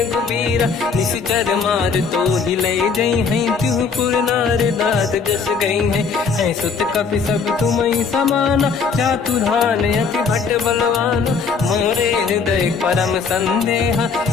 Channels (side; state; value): right; quieter; 5.3 dB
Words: निश्चर मार तो ही ले जई हैं, त्यों पुर नार दात जस गई है। सुत कपि सब तुमहि समाना, चातुधान अति भट बलवान। मोरे हृदय परम संदेहा,